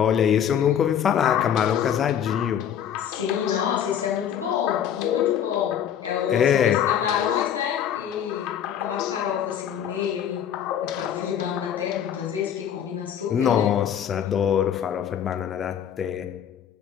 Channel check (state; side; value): quieter; right; 9.2 dB